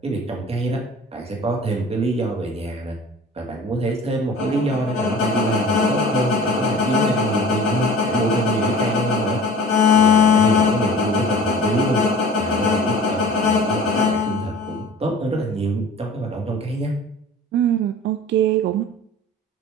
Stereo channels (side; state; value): both; normal; correlation 0.42